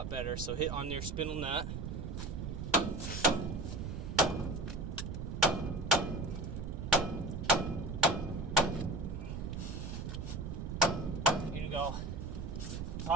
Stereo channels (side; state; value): right; noise; rumble, 5 dB below the sound